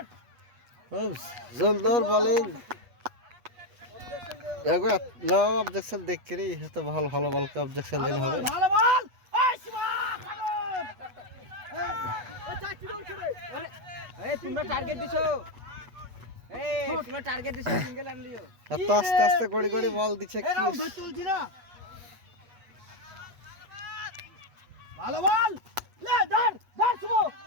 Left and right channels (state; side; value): late; left; 8.2 ms